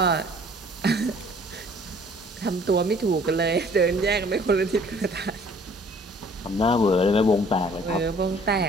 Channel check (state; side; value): normal; both; correlation 0.55